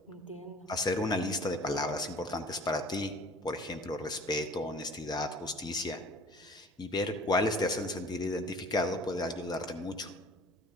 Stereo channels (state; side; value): normal; both; correlation 0.48